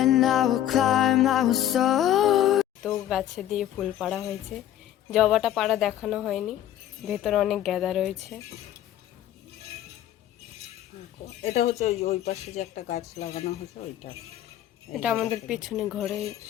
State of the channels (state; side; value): quieter; right; 12.0 dB